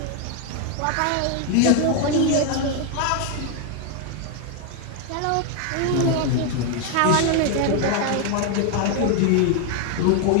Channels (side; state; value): both; different; correlation 0.01